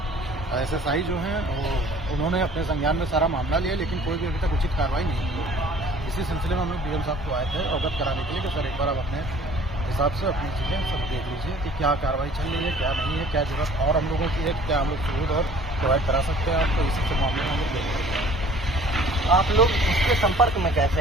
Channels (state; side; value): normal; both; correlation 0.51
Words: SSI जो हैं वो उन्होंने अपने संज्ञान में सारा मामला लिया, लेकिन कोई भी अभी तक उचित कार्रवाई नहीं की। इसी सिलसिले में हम लोग डीएम साहब को आए थे अवगत कराने के लिए कि सर एक बार आप अपने हिसाब से अपनी चीज़ें सब देख लीजिए कि क्या कार्रवाई चल रही है, क्या नहीं है, क्या जरूरत और हम लोगों की है, क्या हम लोग सबूत और प्रोवाइड करा सकते हैं आपको। इसी के मामले में हम लोग देख रहे हैं। आप लोग उसके संपर्क में